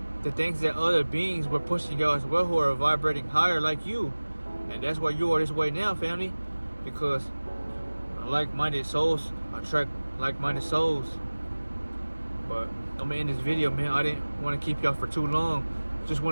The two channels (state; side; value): inverted; both; correlation -1.00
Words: the things that other beings were pushing y'all as well who are vibrating higher like you. And that's why you are this way now, family. Because like-minded souls attract like-minded souls. But I'm gonna end this video, man. I didn't want to keep y'all for too long. Just